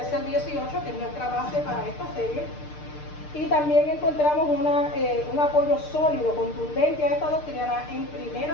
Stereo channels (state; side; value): late; right; 6.7 ms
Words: al 18, que es nuestra base para esta serie, y también encontramos un apoyo sólido, contundente a esta doctrina en